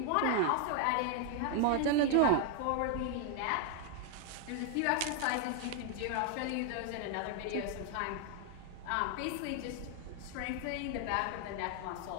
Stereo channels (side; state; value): both; different; correlation 0.00